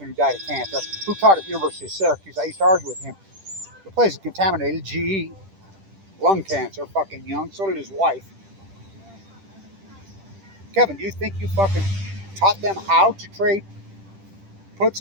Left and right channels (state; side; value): late; left; 10 ms